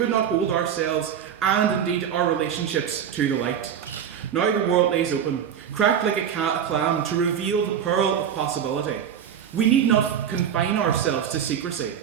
not hold ourselves, and indeed our relationships, to the light. Now the world lays open, cracked like a clam, to reveal the pearl of possibility. We need not confine ourselves to secrecy,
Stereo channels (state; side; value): quieter; left; 8.6 dB